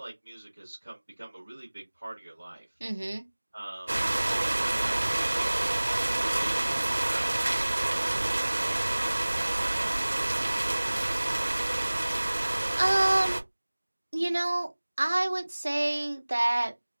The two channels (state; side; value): inverted; both; correlation -1.00